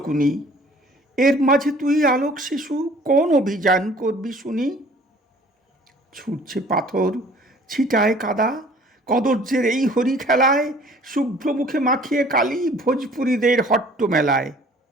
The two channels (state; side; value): normal; both; correlation 0.52